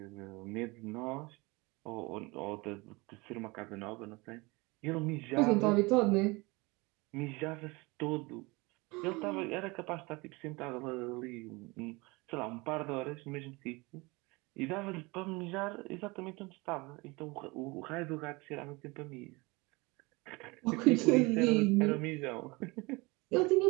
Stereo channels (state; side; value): quieter; left; 24.9 dB